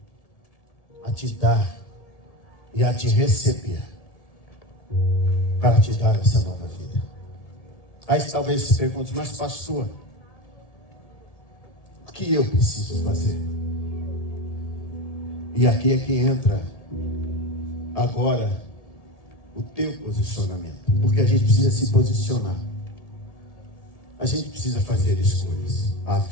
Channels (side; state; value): right; late; 1.7 ms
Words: a te dar e a te receber, para te dar essa nova vida. Aí talvez se pergunte: mas pastor, o que eu preciso fazer? E aqui é que entra agora o teu posicionamento, porque a gente precisa se posicionar, a gente precisa fazer escolhas. A